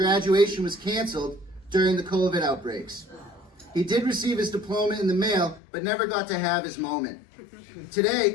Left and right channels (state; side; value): drops out; right; at 5.6 s